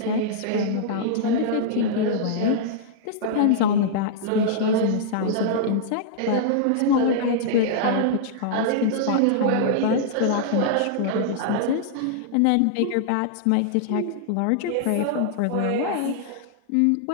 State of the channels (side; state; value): both; different; correlation -0.02